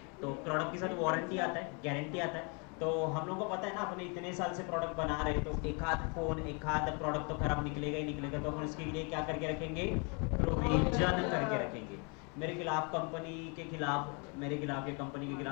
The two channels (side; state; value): right; quieter; 34.4 dB